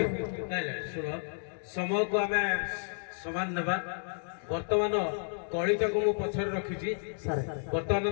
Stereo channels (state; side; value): silent; right; digital silence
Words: ଶୁଣ ସମୟକୁ ଆମେ ସମାନ ନେବା ବର୍ତ୍ତମାନ କଳିଟାକୁ ମୁଁ ପଛରେ ରଖିଛି ବର୍ତ୍ତମାନ